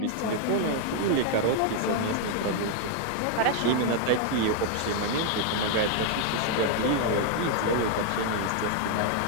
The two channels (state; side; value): different; both; correlation 0.00